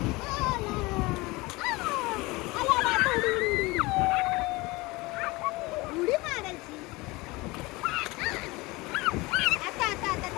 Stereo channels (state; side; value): quieter; right; 22.7 dB